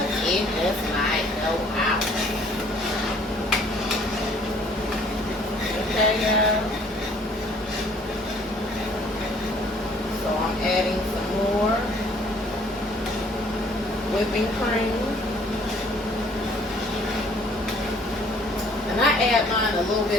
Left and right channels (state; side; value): normal; both; correlation 0.58